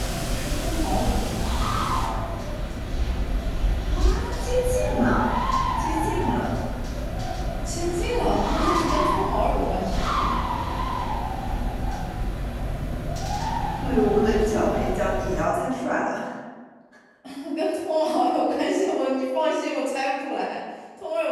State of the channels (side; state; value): both; identical; correlation 1.00